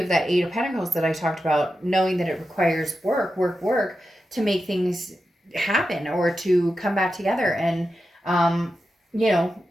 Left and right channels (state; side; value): normal; both; correlation 0.90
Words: that Aid of Pentacles that I talked about, knowing that it requires work to make things happen or to come back together and